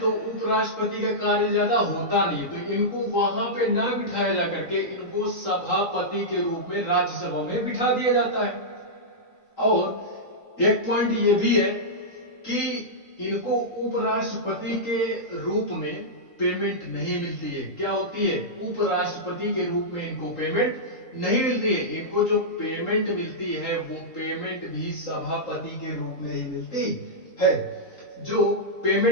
उपराष्ट्रपति का कार्य ज्यादा होता नहीं, तो इनको वहां पे ना बिठाया जा करके इनको सभापति के रूप में राज्यसभा में बिठा दिया जाता है। और एक पॉइंट ये भी है कि इनको उपराष्ट्रपति के रूप में पेमेंट नहीं मिलती है। क्या होती है? उपराष्ट्रपति के रूप में इनको पेमेंट नहीं मिलती है। इनको जो पेमेंट मिलती है वो पेमेंट भी सभापति के रूप में ही मिलती है। जो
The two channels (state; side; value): late; right; 3.8 ms